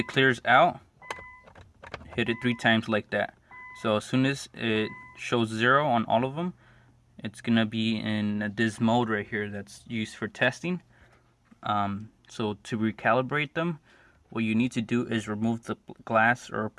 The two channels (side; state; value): both; identical; correlation 1.00